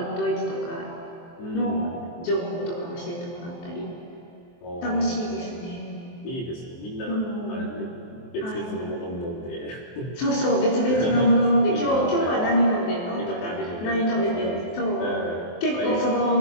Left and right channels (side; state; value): right; late; 23 ms